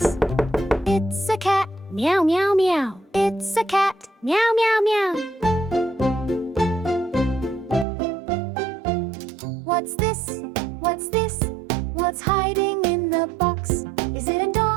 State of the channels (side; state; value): left; drops out; at 7.9 s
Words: It's a cat. Meow, meow, meow. It's a cat. Meow, meow, meow. What's this? What's this? What's hiding in the box? Is it a